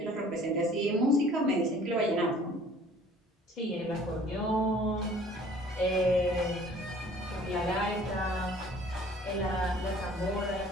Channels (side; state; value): both; normal; correlation 0.53